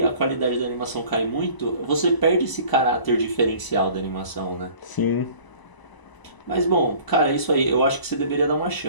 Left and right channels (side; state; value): right; late; 1.0 ms